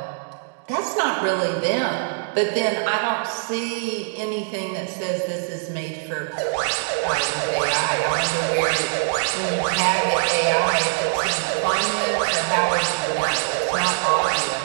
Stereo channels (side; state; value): left; silent; digital silence